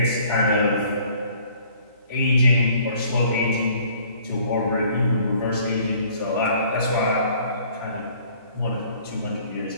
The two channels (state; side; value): inverted; both; correlation -0.57